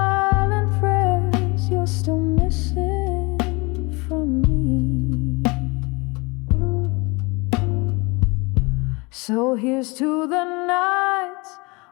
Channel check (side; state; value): right; quieter; 26.7 dB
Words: prayers you're still missing from me. So here's to the nights